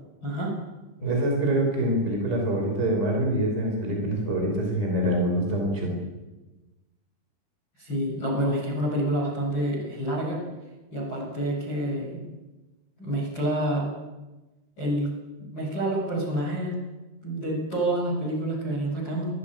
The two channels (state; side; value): late; right; 20 ms